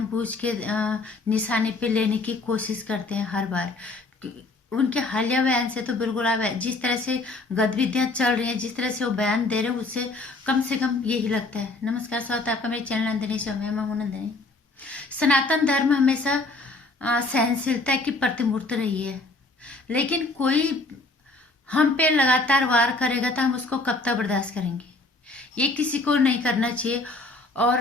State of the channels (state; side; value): quieter; right; 3.1 dB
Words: के निशाने पे लेने की कोशिश करते हैं हर बार। उनके हालिया बयान से तो बिल्कुल अब जिस तरह से गतिविधियां चल रही हैं, जिस तरह से वो बयान दे रहे हैं, उससे कम से कम यही लगता है। नमस्कार, स्वागत है आपका मेरे चैनल नंदिनी शो में। मैं हूं नंदिनी। सनातन धर्म हमेशा सहनशीलता की प्रतिमूर्ति रही है, लेकिन कोई हम पे लगातार वार करेगा तो हम उसको कब तक बर्दाश्त करेंगे? ये किसी को नहीं करना चाहिए।